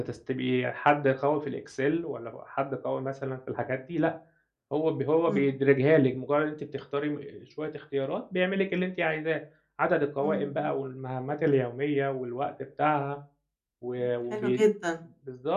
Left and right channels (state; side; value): identical; both; correlation 1.00